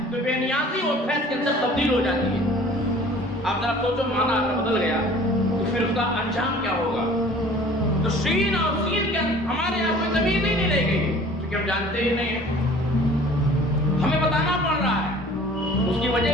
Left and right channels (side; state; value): both; normal; correlation 0.49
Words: تو بے نیازی اور بھینس کے اندر تبدیل ہو جاتی ہے۔ آپ ذرا سوچو معنی اگر بدل گیا تو پھر اس کا انجام کیا ہوگا؟ تو شین اور سین کے ہمارے یہاں کوئی زمین ہی نہیں رہ گئی کیونکہ ہم جانتے ہی نہیں ہیں، ہمیں بتانا پڑ رہا ہے۔ اس کی وجہ